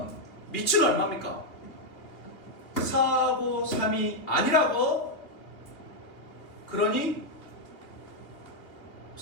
밑은 얼마입니까? 4하고 3이 아니라고? 그러니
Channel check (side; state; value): right; late; 2.9 ms